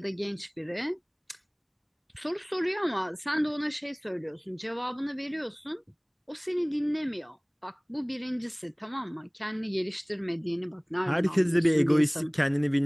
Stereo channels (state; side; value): identical; both; correlation 1.00